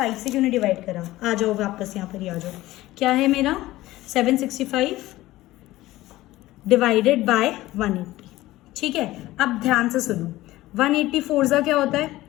से क्यों नहीं डिवाइड करा? आ जाओ वापस यहाँ पर ही आ जाओ। क्या है मेरा 765 डिवाइडेड बाय 180, ठीक है। अब ध्यान से सुनो, 180 4 क्या होता है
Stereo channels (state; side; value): quieter; right; 17.0 dB